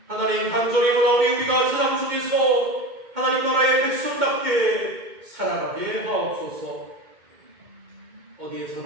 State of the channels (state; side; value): late; left; 2.2 ms